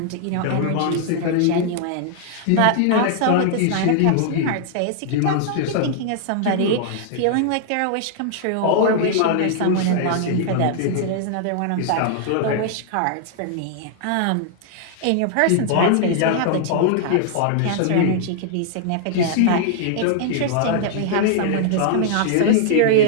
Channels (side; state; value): both; different; correlation -0.01